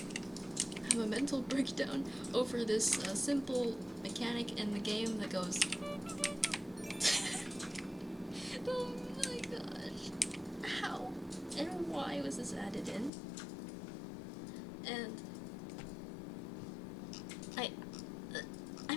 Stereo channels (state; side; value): drops out; right; at 13.1 s